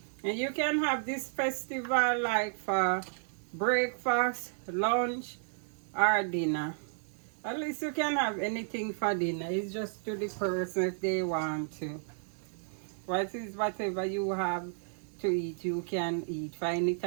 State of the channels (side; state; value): left; silent; digital silence